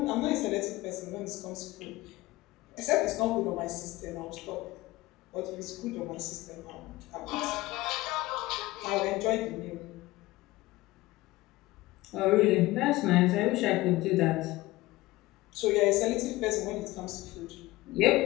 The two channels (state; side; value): quieter; right; 18.6 dB